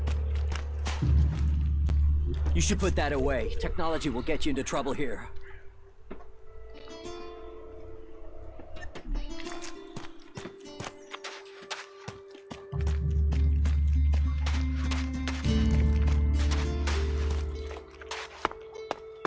You should put that away. Technology will get you into trouble here.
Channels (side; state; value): both; identical; correlation 1.00